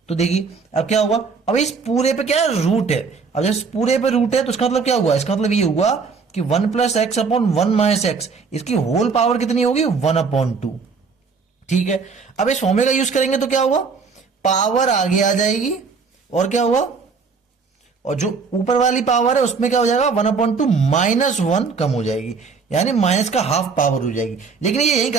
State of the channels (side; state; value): left; quieter; 5.1 dB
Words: तो देखिए अब क्या हुआ, अब इस पूरे पे क्या है, रूट है. अब जब पूरे पे रूट है तो इसका मतलब क्या हुआ, इसका मतलब ये हुआ कि 1 plus x upon 1 minus x, इसकी होल पावर कितनी होगी, 1 अपॉन 2. ठीक है, अब इस फॉर्मूले का यूज करेंगे तो क्या हुआ, पावर आगे आ जाएगी और क्या हुआ, और जो ऊपर वाली पावर है उसमें क्या हो जाएगा, 1/2 माइनस 1 कम हो जाएगी, यानी माइनस का हाफ पावर हो जाएगी. लेकिन ये यही